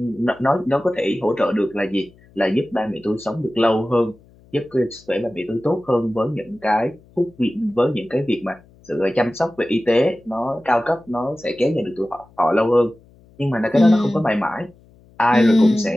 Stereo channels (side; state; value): left; noise; hum, 28 dB below the sound